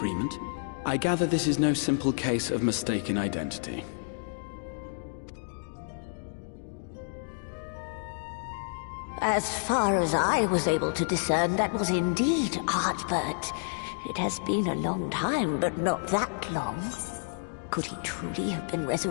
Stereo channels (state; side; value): silent; right; digital silence